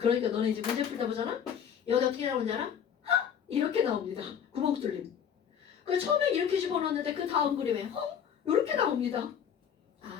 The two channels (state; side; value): quieter; right; 8.2 dB